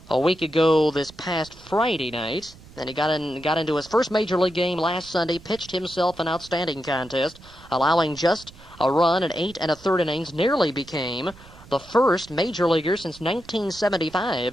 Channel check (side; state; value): right; noise; rumble, 21 dB below the sound